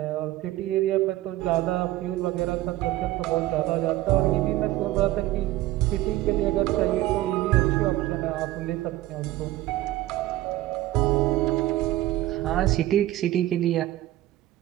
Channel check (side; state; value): left; quieter; 15.7 dB